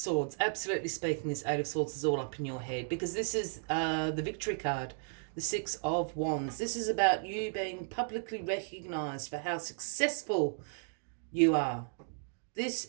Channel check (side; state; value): left; silent; digital silence